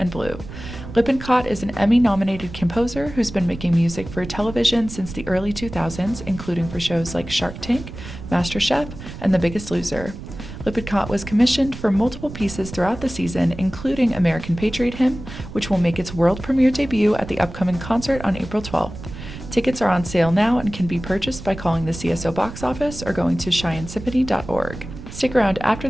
Blue. Lippencott is an Emmy-nominated composer who's been making music for television since the early 2000s, including for shows like Shark Tank, MasterChef, and The Biggest Loser. Lippencott was commissioned for multiple pieces throughout the season, including American Patriot Hymn, which will make its world premiere debut at the upcoming concert on April 12th. Tickets are on sale now and can be purchased by calling the CSO box office or going to CheyenneSymphony.org. Stick around after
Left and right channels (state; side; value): noise; right; rumble, 12 dB below the sound